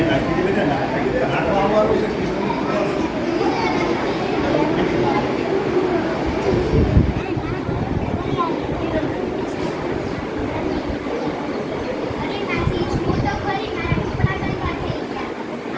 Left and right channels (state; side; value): identical; both; correlation 1.00